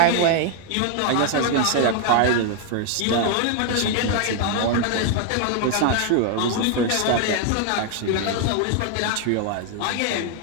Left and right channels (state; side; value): different; both; correlation 0.00